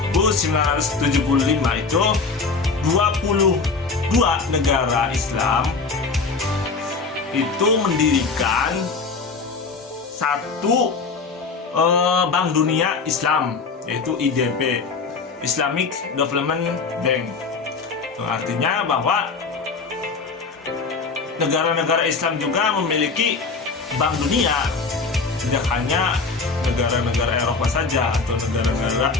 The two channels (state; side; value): quieter; right; 4.5 dB